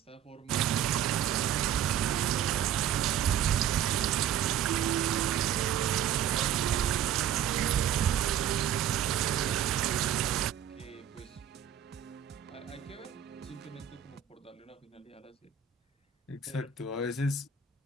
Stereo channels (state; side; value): quieter; left; 9.5 dB